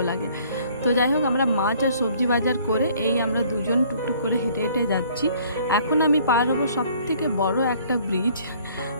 লাগে। তো যাই হোক, আমরা মাছ আর সবজি বাজার করে এই আমরা দুজন টুকটুক করে হেঁটে হেঁটে যাচ্ছি। এখন আমি পার হবো সবথেকে বড় একটা ব্রিজ।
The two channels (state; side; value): inverted; both; correlation -0.58